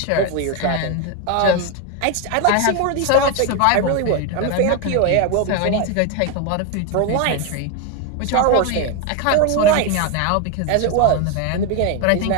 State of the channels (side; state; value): both; different; correlation 0.02